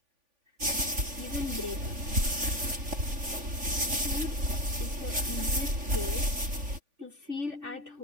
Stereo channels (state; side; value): late; left; 3.5 ms